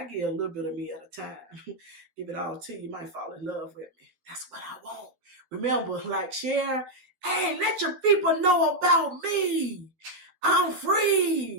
give a little bit of me at a time. Give it all to you. You might fall in love with me. That's what I want. Remember, like, share. Hey, let your people know about me. I'm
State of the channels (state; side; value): late; left; 12 ms